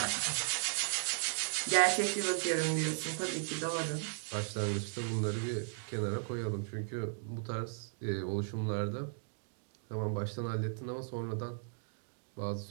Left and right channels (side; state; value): left; silent; digital silence